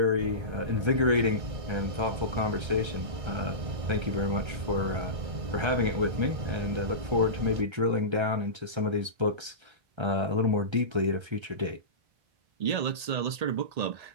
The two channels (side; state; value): left; late; 1.3 ms